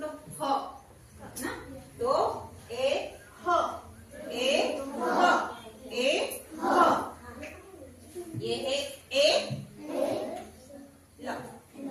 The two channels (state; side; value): identical; both; correlation 1.00